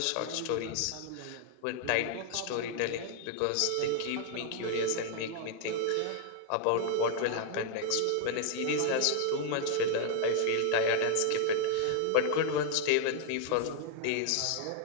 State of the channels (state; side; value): different; both; correlation 0.00